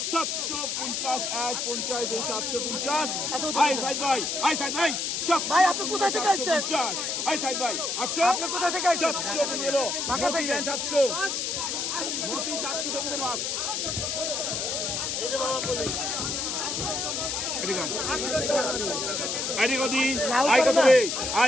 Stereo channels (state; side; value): noise; left; hiss, 1 dB below the sound